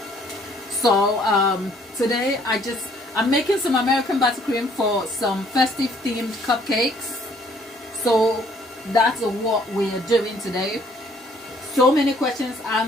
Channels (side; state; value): both; normal; correlation 0.62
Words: So today I'm making some American buttercream for some festive themed cupcakes. So that's what we are doing today. So many questions